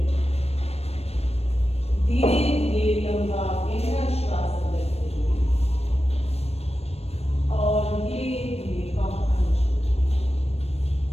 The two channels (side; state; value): right; late; 0.30 ms